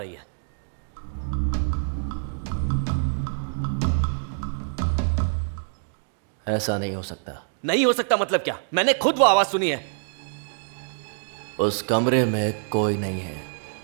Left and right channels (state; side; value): silent; left; digital silence